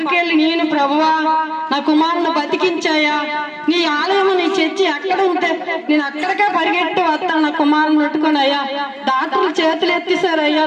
వెళ్ళి, నేను ప్రభువా నా కుమారుని బతికించాయా, నీ ఆలయం నీ చర్చి అక్కడ ఉంటే నేను అక్కడికే పరిగెట్టి వస్తాను నా కుమారుని పెట్టుకుని. అయ్యా డాక్టర్లు చేతులు ఎత్తేసారు, అయ్యా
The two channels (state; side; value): identical; both; correlation 1.00